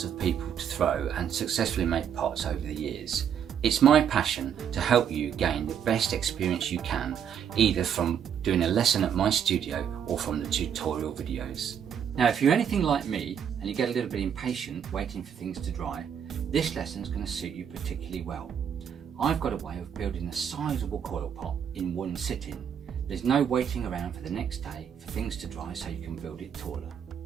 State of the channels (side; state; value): left; quieter; 8.3 dB